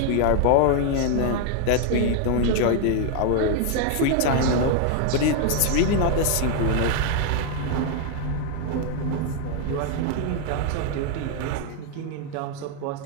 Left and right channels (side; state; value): both; different; correlation 0.00